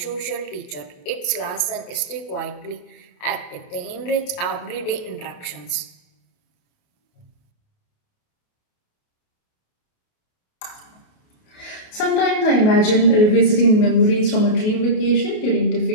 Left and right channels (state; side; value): late; right; 28 ms